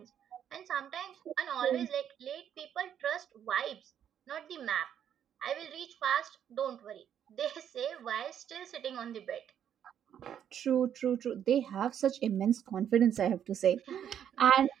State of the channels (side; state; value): left; quieter; 9.3 dB